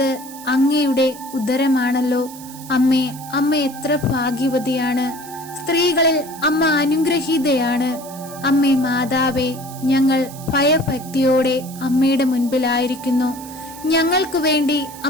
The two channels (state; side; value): noise; right; hiss, 17 dB below the sound